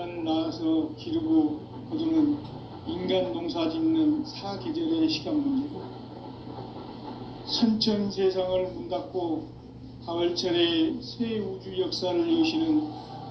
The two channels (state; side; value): identical; both; correlation 1.00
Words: 낳아서 기르고 거두는 인간 농사 짓는 사계절의 시간 문제고, 선천 세상을 문 닫고 가을철에 새 우주 역사를 여시는